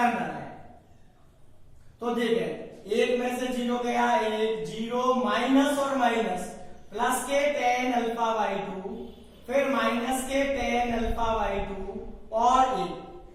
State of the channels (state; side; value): identical; both; correlation 1.00